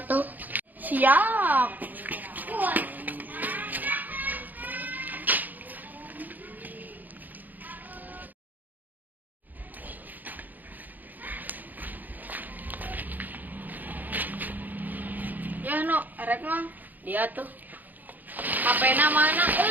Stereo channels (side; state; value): left; late; 0.084 ms